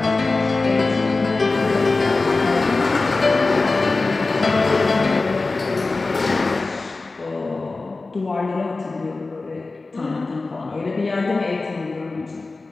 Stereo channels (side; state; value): right; quieter; 3.6 dB